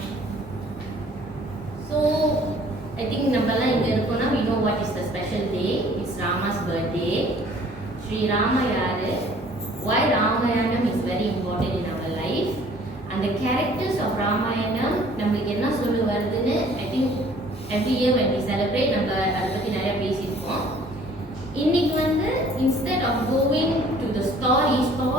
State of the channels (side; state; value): both; normal; correlation 0.55